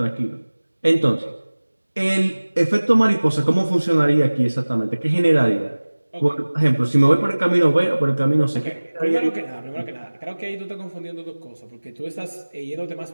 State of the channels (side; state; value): both; inverted; correlation -1.00